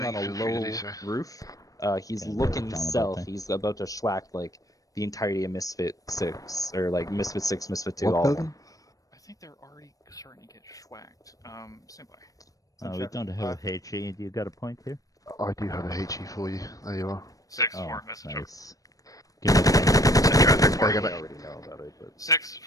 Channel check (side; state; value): right; late; 0.17 ms